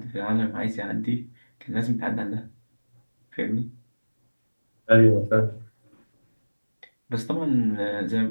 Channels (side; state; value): both; inverted; correlation -1.00